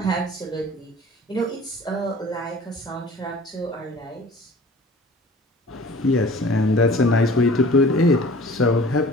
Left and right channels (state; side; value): normal; both; correlation 0.46